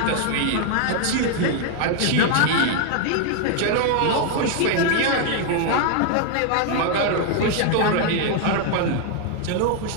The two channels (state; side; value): different; both; correlation 0.00